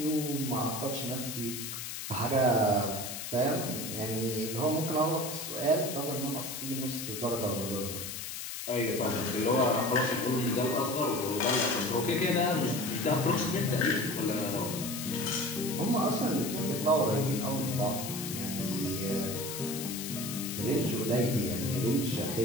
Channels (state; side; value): noise; left; hiss, 7 dB below the sound